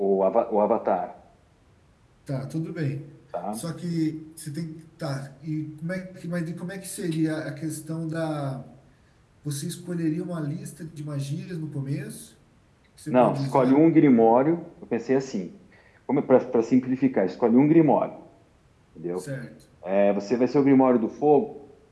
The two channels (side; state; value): both; identical; correlation 1.00